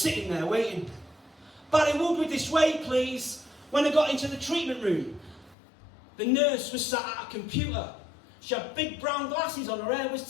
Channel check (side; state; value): right; drops out; at 5.6 s